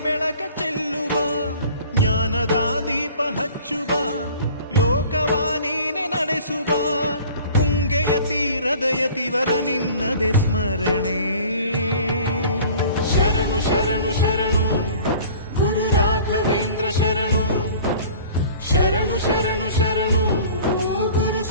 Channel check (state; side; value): inverted; both; correlation -0.46